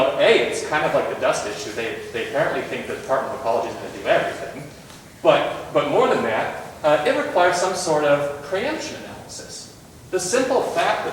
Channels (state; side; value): identical; both; correlation 1.00